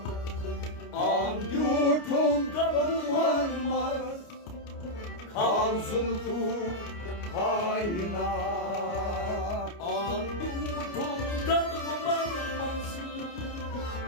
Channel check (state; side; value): late; right; 29 ms